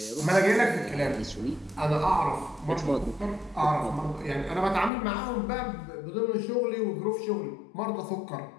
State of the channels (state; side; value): drops out; right; at 4.9 s